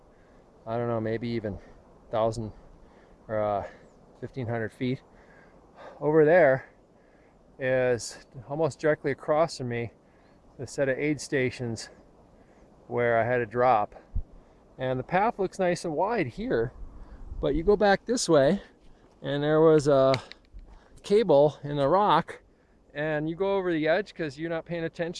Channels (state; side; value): identical; both; correlation 1.00